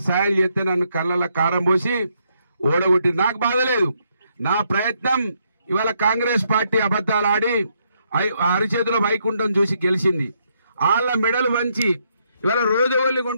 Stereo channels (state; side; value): inverted; both; correlation -0.75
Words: సాయం చేస్తే నన్ను కళ్ళలో కారం పోసి ఓడగొట్టి నాకు బాధ లేదు. నా ప్రయత్నం ఇవాళ కాంగ్రెస్ పార్టీ అబద్ధాలు ఆడి అరిచేతిలో వైకుంఠం చూసి గెలిచింది. వాళ్ళ మెడలు వంచి ఇవాళ రోజువల్లి